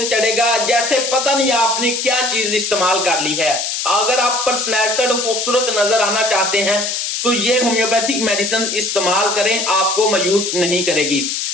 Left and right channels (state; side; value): noise; left; hiss, 2 dB below the sound